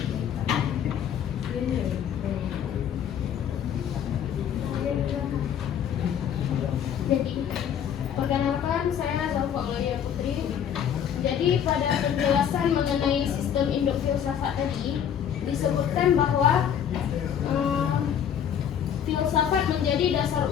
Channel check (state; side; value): quieter; right; 8.9 dB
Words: Jadi, perkenalkan saya Zalfa Aulia Putri. Jadi pada penjelasan mengenai sistem induk filsafat tadi disebutkan bahwa filsafat menjadi dasar